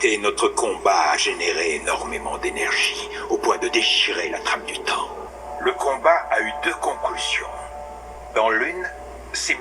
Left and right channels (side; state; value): both; identical; correlation 1.00